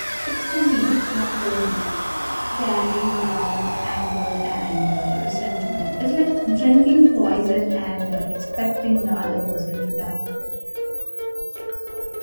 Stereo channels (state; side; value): inverted; both; correlation -1.00